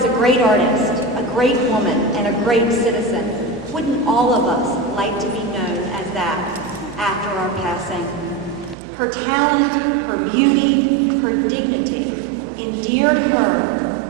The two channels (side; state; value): left; drops out; at 8.8 s